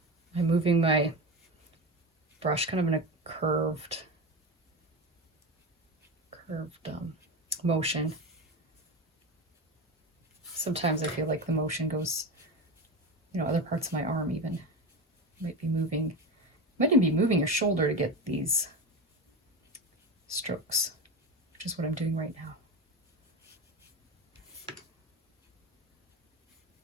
I'm moving my brush kind of in a curved motion. Sometimes I feel like the motion goes, other parts of my arm even might even be moving your shoulder to get these strokes, which is what I'm doing right now.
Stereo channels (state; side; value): normal; both; correlation 0.22